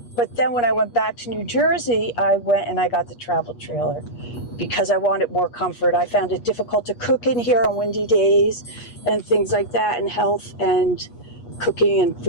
but then when I went back to New Jersey, I went and I got the travel trailer because I wanted more comfort. I found it difficult to cook in here on windy days and things like that, and health and cooking and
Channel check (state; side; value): late; right; 8.3 ms